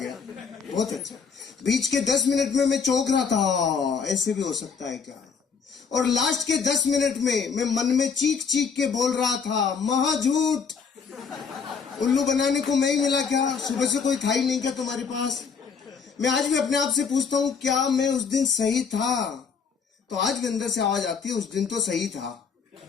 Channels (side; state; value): right; quieter; 5.8 dB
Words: बहुत अच्छा। बीच के 10 मिनट में मैं चौंक रहा था, ऐसे भी हो सकता है क्या। और लास्ट के 10 मिनट में मैं मन में चीख चीख के बोल रहा था महा झूठ, उल्लू बनाने को मैं ही मिला क्या? सुबह से कोई था ही नहीं क्या तुम्हारे पास? मैं आज भी अपने आप से पूछता हूँ क्या मैं उस दिन सही था? तो आज भी अंदर से आवाज आती है उस दिन तो सही था।